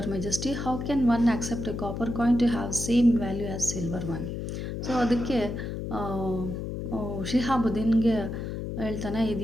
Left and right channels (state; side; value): noise; left; hum, 5 dB below the sound